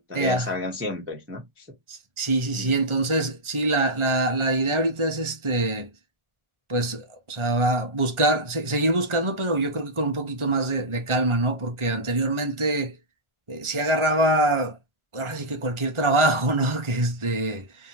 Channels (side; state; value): left; late; 1.4 ms